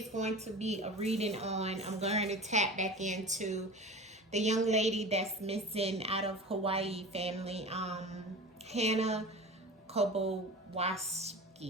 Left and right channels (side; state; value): both; normal; correlation 0.34